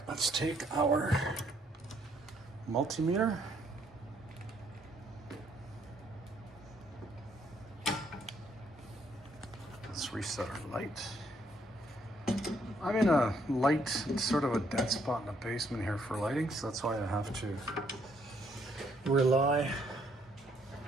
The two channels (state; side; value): normal; both; correlation 0.69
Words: let's take our multimeter. Let's reset our light. I'm in a light, sort of a dead spot in the basement here for lighting, so that's why I have to rely